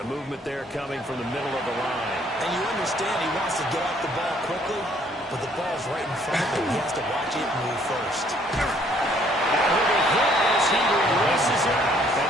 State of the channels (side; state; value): both; normal; correlation 0.63